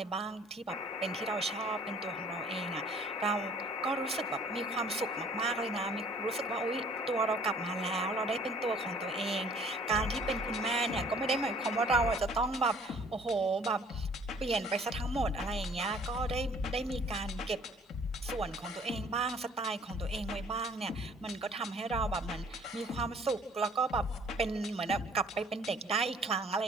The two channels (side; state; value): both; normal; correlation 0.55